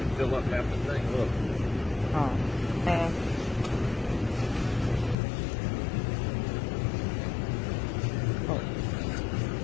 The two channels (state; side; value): drops out; right; at 5.2 s